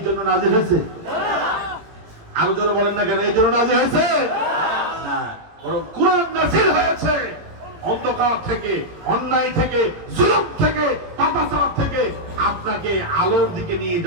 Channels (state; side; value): late; left; 18 ms